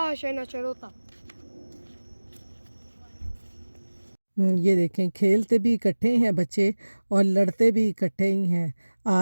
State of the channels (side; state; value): both; inverted; correlation -1.00